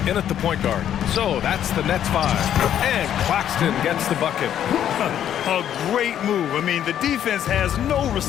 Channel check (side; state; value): right; quieter; 10.3 dB